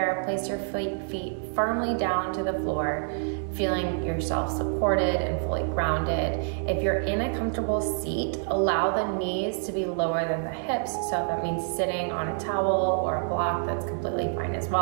place your feet firmly down to the floor, feeling yourself supported and fully grounded. If you're in a comfortable seat, allow the knees to be lower than the hips. So if that means sitting on a towel or a block, that's completely fine as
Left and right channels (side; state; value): left; silent; digital silence